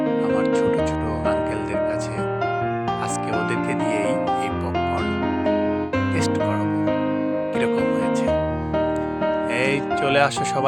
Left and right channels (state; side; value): identical; both; correlation 1.00